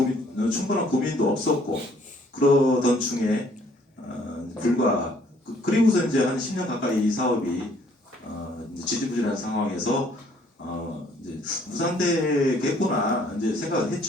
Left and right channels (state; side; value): normal; both; correlation 0.62